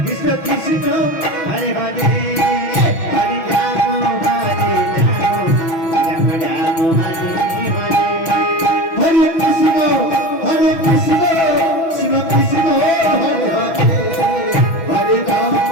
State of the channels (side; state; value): right; late; 6.1 ms